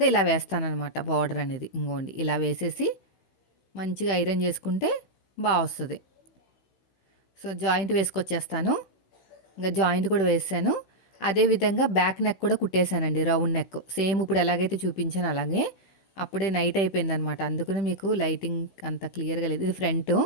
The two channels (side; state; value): right; late; 16 ms